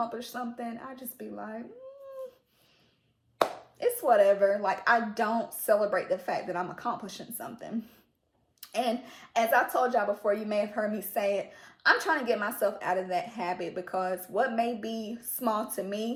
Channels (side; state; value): both; identical; correlation 1.00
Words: something, I just be like, it's whatever. Like, I don't celebrate the fact that I'm accomplishing something. And as I told y'all before, you may have heard me say it, I'm trying to get myself out of that habit because what may be small to